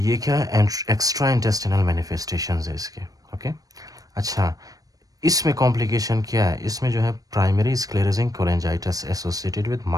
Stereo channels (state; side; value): late; left; 0.18 ms